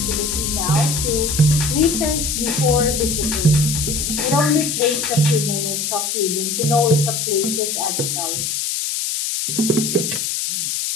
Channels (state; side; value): noise; left; hiss, 1 dB below the sound